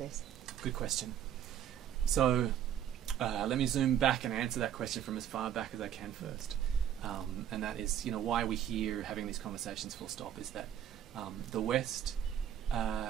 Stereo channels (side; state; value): left; quieter; 10.0 dB